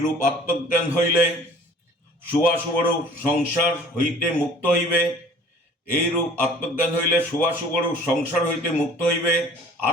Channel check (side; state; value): both; normal; correlation 0.49